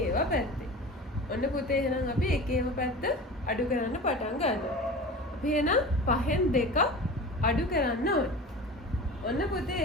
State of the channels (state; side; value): normal; both; correlation 0.35